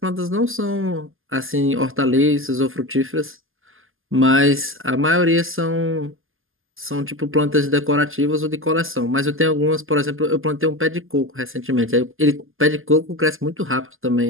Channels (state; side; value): late; left; 0.59 ms